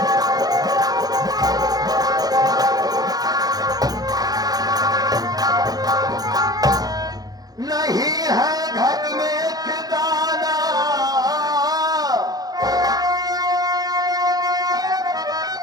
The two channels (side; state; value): left; late; 0.19 ms